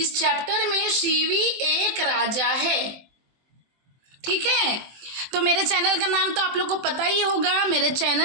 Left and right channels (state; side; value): late; left; 23 ms